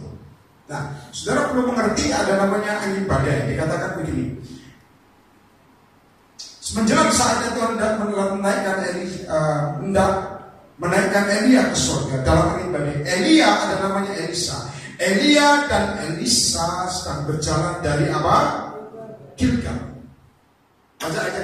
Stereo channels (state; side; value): identical; both; correlation 1.00